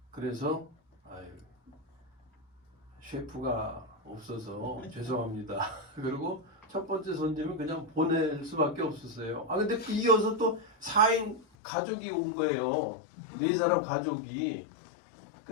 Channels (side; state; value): right; drops out; at 11.5 s